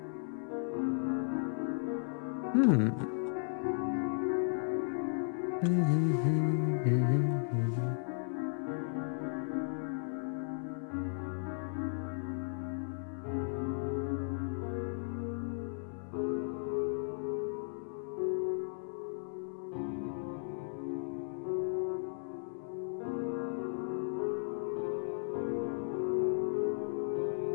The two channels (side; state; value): right; silent; 54 dB below the other